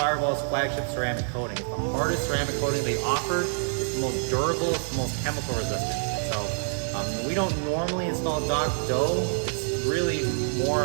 flagship ceramic coating. It's the hardest ceramic coating they offer. It's the most durable, it's the most chemical resistant. So we don't normally install Doc-Dough. It's really more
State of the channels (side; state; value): left; silent; 58 dB below the other